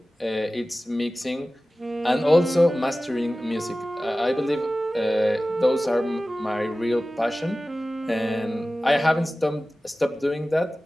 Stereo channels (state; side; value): normal; both; correlation 0.96